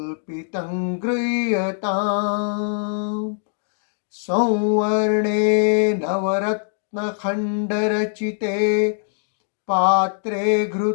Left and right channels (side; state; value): right; silent; digital silence